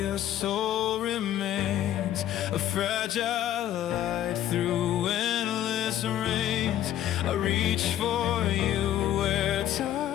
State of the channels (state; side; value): quieter; right; 12.0 dB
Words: soul remains a fragile light through endless rains. I reach for you where